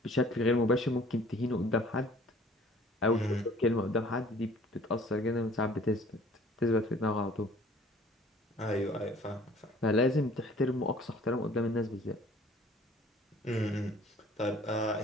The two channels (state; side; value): normal; both; correlation 0.52